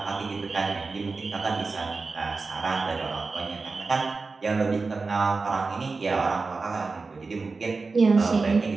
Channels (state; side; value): quieter; left; 4.1 dB